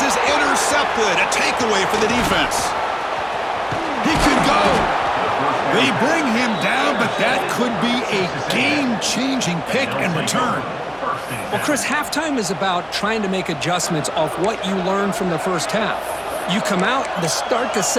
is intercepted. A takeaway for the defense. He could go. They bring him down, but that could be a game-changing pick and return. Well, Chris, halftime is about trying to make adjustments off what you learned from the first half. You come out to start the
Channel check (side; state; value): both; identical; correlation 1.00